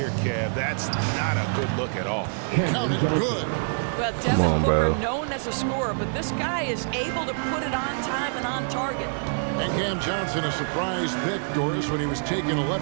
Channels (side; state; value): left; silent; digital silence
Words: Kev. That's not a good look at all. Count it good. Well, Devin on, Booker, bro. known as a scorer, but this guy is able to put it on time and on target. And Cam Johnson, a surprise pick, Doris, when he was taken